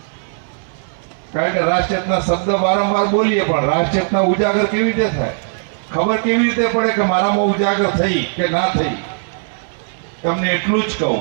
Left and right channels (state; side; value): silent; left; 61 dB below the other